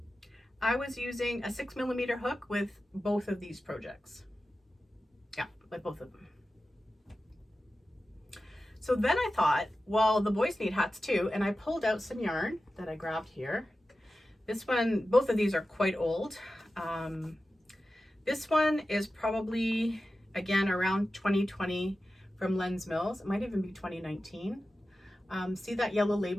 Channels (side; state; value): both; normal; correlation 0.93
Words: I was using a 6mm hook with both of these projects. Yeah, with both of them. So then I thought, well, the boys need hats too, and I pulled out some yarn that I grabbed here. This one, both of these are quite old. This one is probably, again, around 2020 from Lens Mills. It might even be 2019. See that yellow